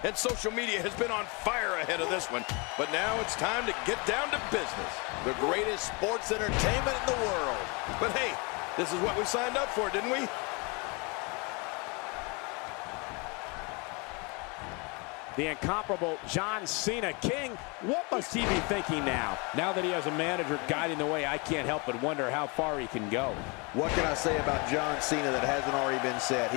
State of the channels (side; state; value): right; quieter; 30.1 dB